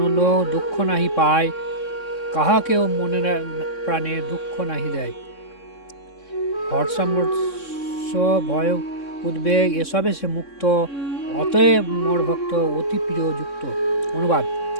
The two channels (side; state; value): right; late; 3.6 ms